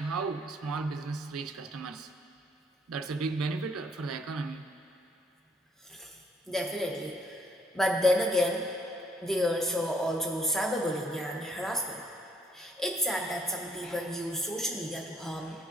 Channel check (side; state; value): both; normal; correlation 0.68